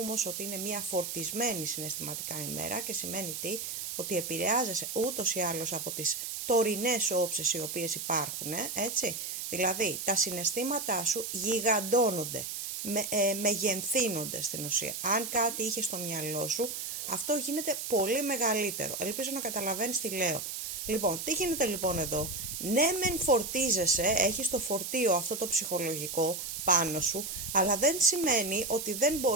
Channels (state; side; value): noise; right; hiss, 5 dB below the sound